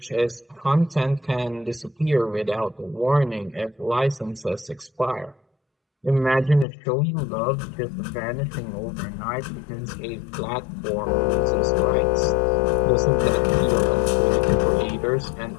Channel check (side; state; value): right; drops out; at 6.7 s